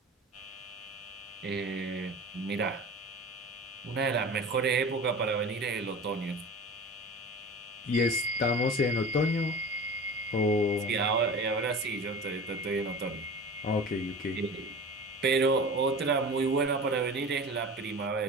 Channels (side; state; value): both; normal; correlation 0.35